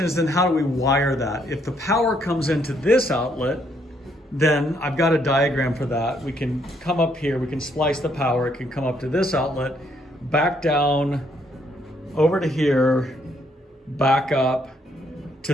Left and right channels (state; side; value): normal; both; correlation 0.71